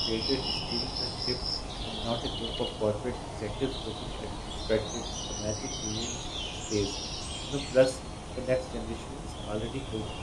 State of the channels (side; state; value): both; identical; correlation 1.00